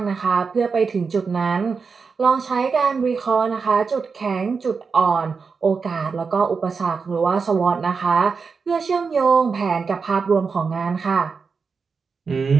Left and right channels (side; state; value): left; quieter; 5.1 dB